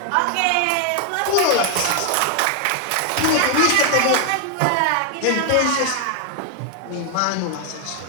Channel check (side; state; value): both; different; correlation 0.00